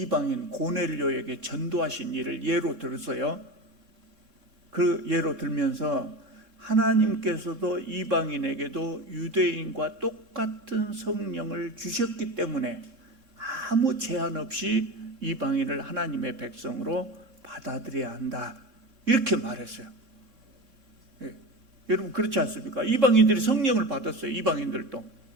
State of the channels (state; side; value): late; left; 3.7 ms